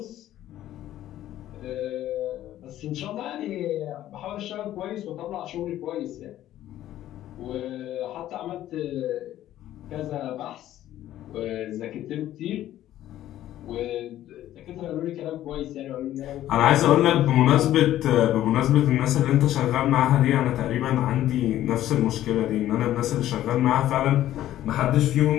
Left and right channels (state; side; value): quieter; right; 13.1 dB